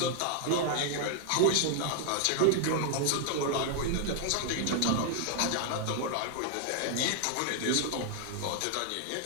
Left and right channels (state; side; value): different; both; correlation 0.00